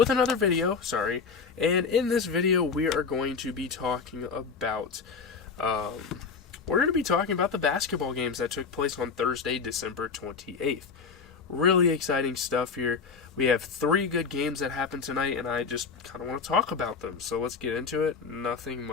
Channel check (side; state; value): right; quieter; 5.3 dB